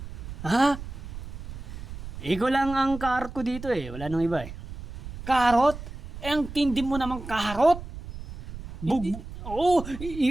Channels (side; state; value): right; noise; rumble, 11 dB below the sound